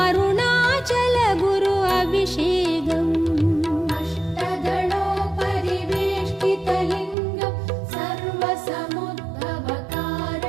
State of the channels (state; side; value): drops out; left; at 7.2 s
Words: அருணாச்சல குரு அபிஷேகம். अष्टदलोपरिवेष्टितलिङ्गं